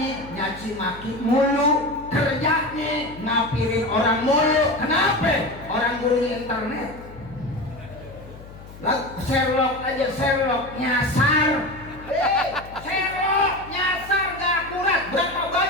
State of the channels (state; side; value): noise; left; hum, 17 dB below the sound